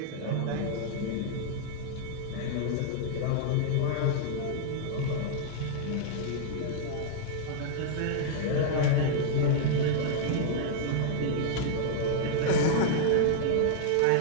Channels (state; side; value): different; both; correlation -0.01